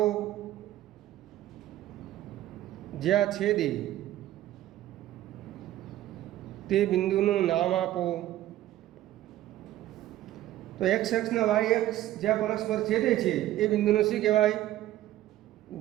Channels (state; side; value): quieter; left; 14.1 dB